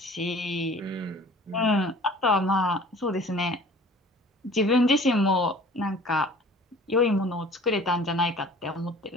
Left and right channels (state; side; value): normal; both; correlation 0.48